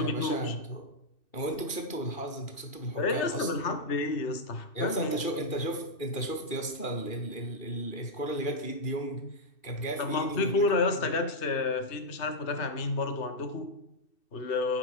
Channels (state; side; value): late; right; 2.6 ms